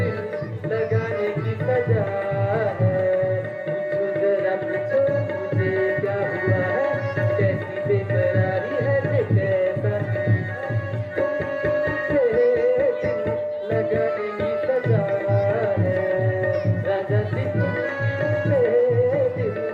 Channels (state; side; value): identical; both; correlation 1.00